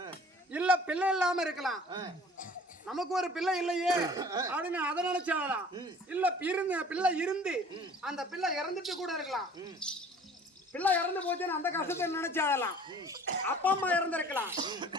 இல்ல பிள்ளை இல்லாம இருக்கலாம், நமக்கு ஒரு பிள்ளை இல்லையே அப்படின்னு அதை நினைச்சு அழலாம். இல்ல பிள்ளை இருந்து அந்த பிள்ளை இறந்துட்டு கூட இருக்கலாம். பிள்ளை இறந்து போச்சுன்னு அந்த கஷ்டத்தை நினைச்சு அழலாம். அப்பா அம்மா இறந்திருக்கலாம்.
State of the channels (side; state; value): both; normal; correlation 0.49